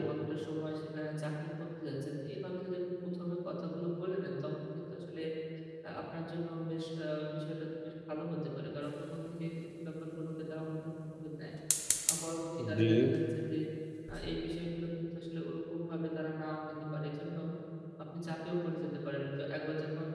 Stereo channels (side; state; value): both; identical; correlation 1.00